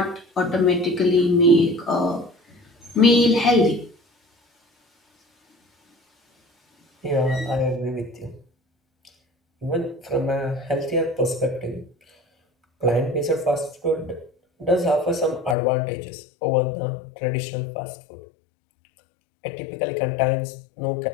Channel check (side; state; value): right; drops out; at 15.6 s